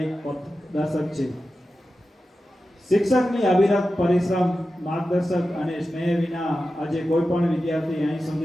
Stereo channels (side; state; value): both; normal; correlation 0.93